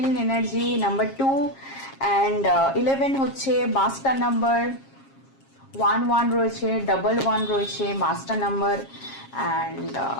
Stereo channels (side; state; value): right; late; 7.4 ms